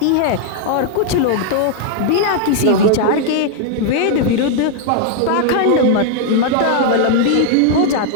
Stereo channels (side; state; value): both; different; correlation 0.00